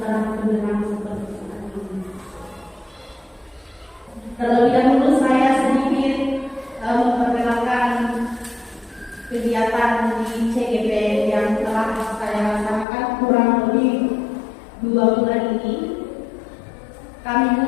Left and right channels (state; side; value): drops out; right; at 12.9 s